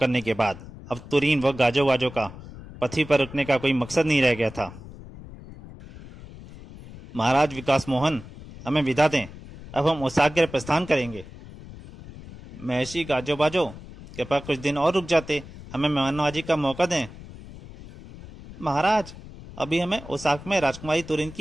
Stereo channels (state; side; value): noise; left; rumble, 16 dB below the sound